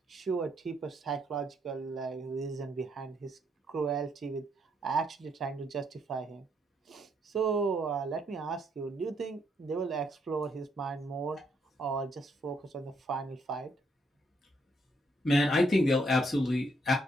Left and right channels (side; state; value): both; normal; correlation 0.73